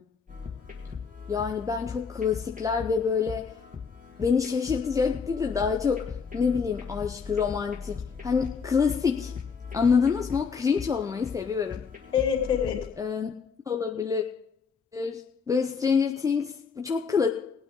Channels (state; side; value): quieter; right; 5.7 dB